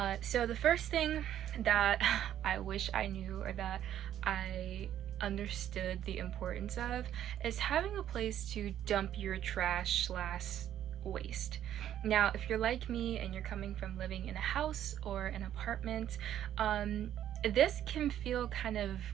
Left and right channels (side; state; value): left; quieter; 11.1 dB